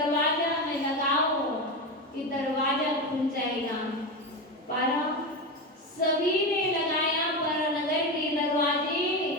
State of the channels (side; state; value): both; normal; correlation 0.18